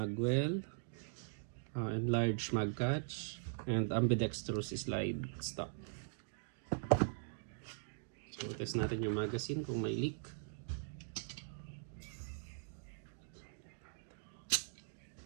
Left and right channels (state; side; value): silent; left; digital silence